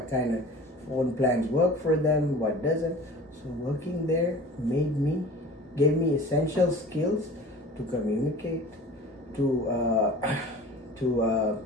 kind of phone plans work for them, what doesn't. So working there gave me essential skills to communicate, to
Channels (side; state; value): both; normal; correlation 0.41